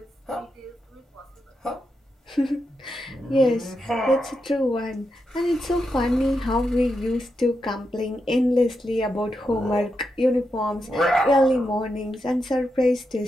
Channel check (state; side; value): normal; both; correlation 0.86